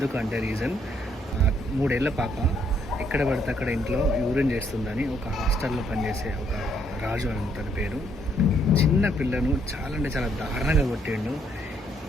రీజన్ 3 ఏళ్ల పాప ఎక్కడ పడితే అక్కడ ఇంట్లో యూరిన్ చేస్తుందని ఒక హాస్టల్లో పనిచేసే ఒక రాజు అని తన పేరు, చిన్న పిల్లను చాలా అంటే చాలా దారుణంగా కొట్టిండు.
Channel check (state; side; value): normal; both; correlation 0.70